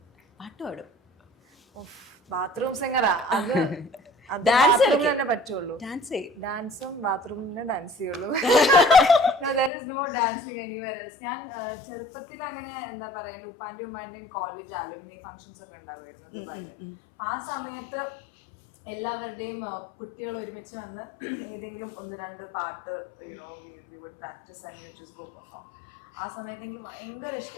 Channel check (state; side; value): drops out; right; at 9.7 s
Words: പാട്ട് പാടും. ബാത്റൂം സിംഗറാ അത്. Dance തന്നെ പറ്റുള്ളൂ. ഡാൻസും ബാത്റൂമിന് ഡാൻസ് ചെയ്യുള്ളൂ. there is no dancing anywhere else. ഞാൻ ചെറുപ്പത്തിൽ അങ്ങനെ എന്താ പറയാ എൻ്റെ ഉപ്പാന്റെയും ഉമ്മാന്റെയും കോളേജ് അലുമിനി ഫംഗ്ഷൻസ് ഒക്കെ ഉണ്ടാവുമായിരുന്നു ദുബായില്. ആ സമയത്ത് എല്ലാവരുടെയും കുട്ടികൾ ഒരുമിച്ച് വന്ന് ഏതെങ്കിലും 1-2 പാട്ട് we would practice and we would just go perform. ആ സമയത്ത് എനിക്ക് ഭയങ്കര